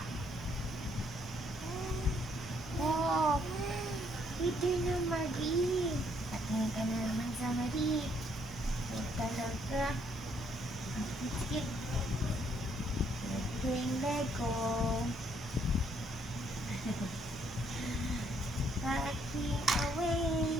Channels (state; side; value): normal; both; correlation 0.69